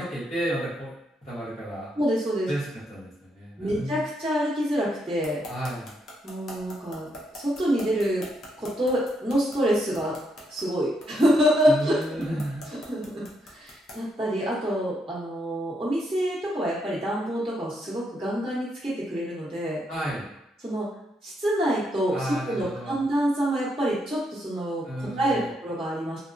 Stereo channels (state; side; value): normal; both; correlation 0.78